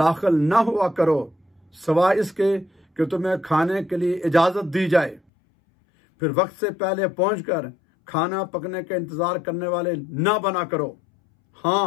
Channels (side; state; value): right; drops out; at 5.2 s